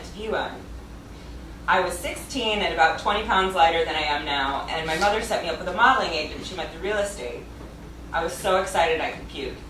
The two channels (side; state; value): both; identical; correlation 1.00